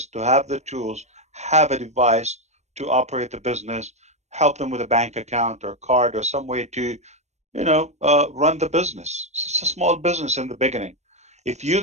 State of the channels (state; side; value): late; left; 0.33 ms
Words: to have the tools, have a device to operate the business, help them with a bank account or card or some way to, you know, run the business. It's a small business in the beginning. If you